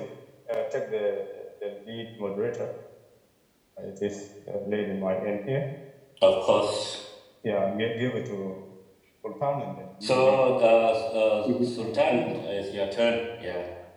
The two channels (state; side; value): identical; both; correlation 1.00